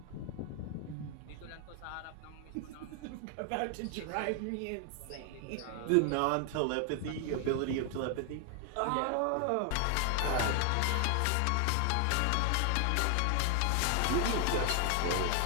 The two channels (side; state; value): both; different; correlation 0.00